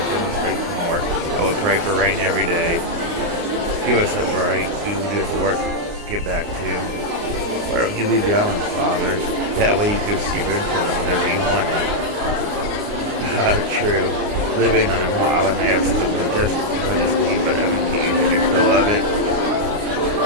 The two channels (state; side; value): late; left; 29 ms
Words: face more, I would pray for rain every day. Give us a break. We will do have to work to get back to. Why don't you leave the island, Father? That way you can see your grandchildren whenever you want it. True. Living on a remote island may have some majesty, but haven't you had your fill of it?